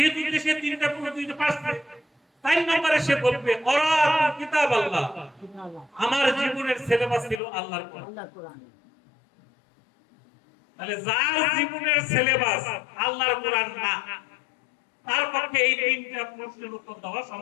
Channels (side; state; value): right; drops out; at 7.4 s